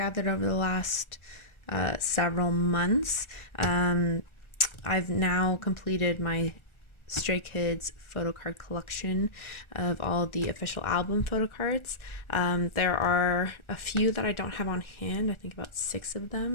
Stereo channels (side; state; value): right; late; 1.4 ms